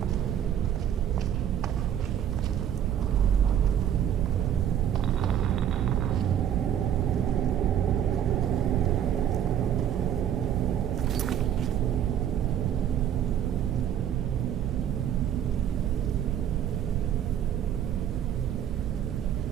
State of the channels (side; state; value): left; quieter; 9.8 dB